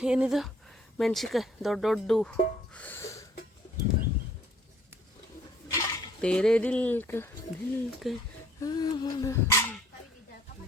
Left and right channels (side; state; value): both; normal; correlation 0.60